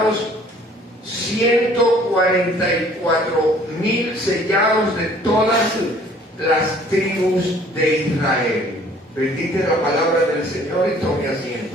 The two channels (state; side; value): normal; both; correlation 0.55